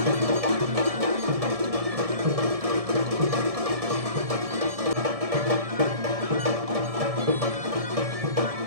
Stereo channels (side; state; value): left; late; 1.7 ms